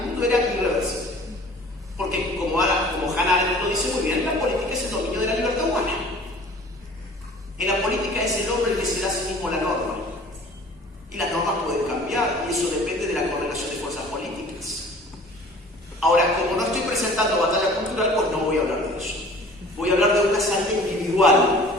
mundo era irreversible. Porque como Hannah Arendt lo dice muy bien, la política es el dominio de la libertad humana. En la política es el hombre el que se da a sí mismo la norma. Y las normas pueden cambiar, y eso depende de la correlación de fuerzas políticas. Ahora, como no estoy presentando batalla cultural, pues no voy a hablar de eso. Voy a hablar de una salida individual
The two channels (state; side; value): normal; both; correlation 0.47